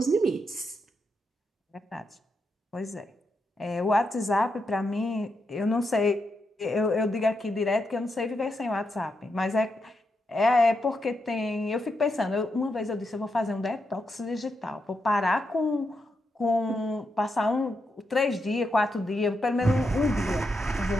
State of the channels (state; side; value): normal; both; correlation 0.84